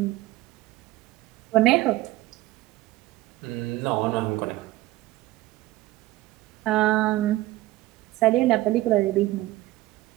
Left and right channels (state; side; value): quieter; left; 17.2 dB